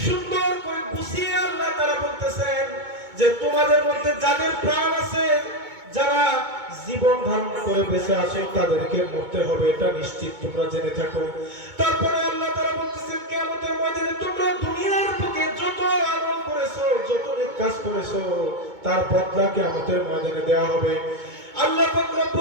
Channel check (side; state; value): left; late; 2.2 ms